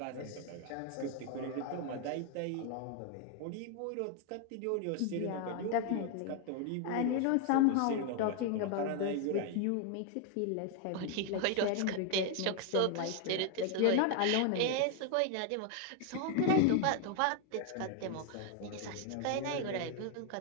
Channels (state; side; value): different; both; correlation 0.00